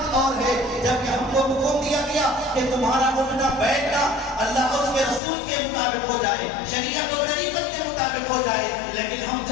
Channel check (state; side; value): drops out; right; at 5.2 s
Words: اور ہے۔ جب کہ ہم کو حکم دیا گیا کہ تمہارا اٹھنا بیٹھنا اللہ اور اس کے رسول کے مطابق ہو جائے، شریعت و طریقت کے مطابق ہو جائے، لیکن ہم